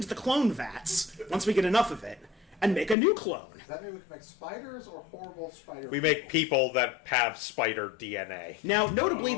the clone vats, once we get enough of it, and make a new clone. Does that mean we can make spiders or horrible spider We make people that have spider DNA. Now, notably,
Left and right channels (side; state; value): right; drops out; at 3.0 s